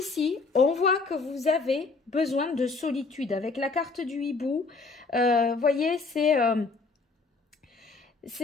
on voit que vous avez besoin de solitude. Avec la carte du hibou, voyez, c'est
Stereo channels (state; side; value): quieter; right; 4.1 dB